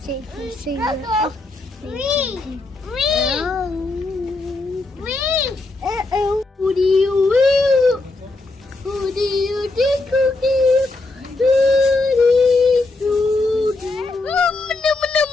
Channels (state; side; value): quieter; right; 3.1 dB